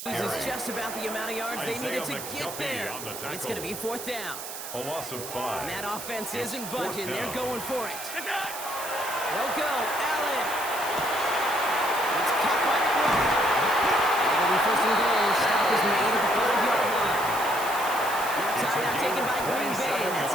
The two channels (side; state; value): right; noise; hiss, 9 dB below the sound